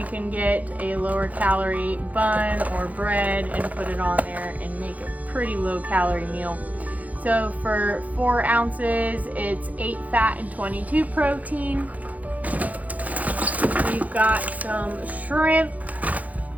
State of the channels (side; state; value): left; late; 0.075 ms